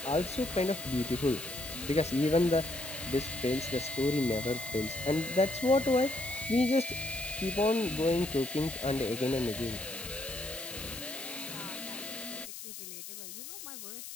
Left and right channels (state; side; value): noise; left; hiss, 10 dB below the sound